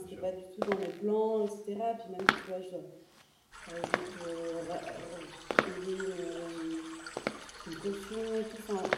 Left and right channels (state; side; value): identical; both; correlation 1.00